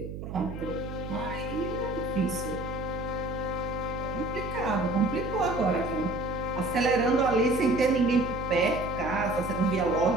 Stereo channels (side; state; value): right; noise; hum, 8 dB below the sound